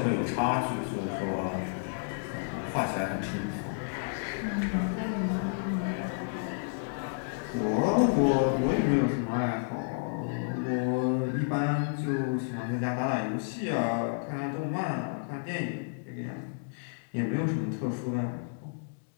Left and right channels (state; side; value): silent; right; digital silence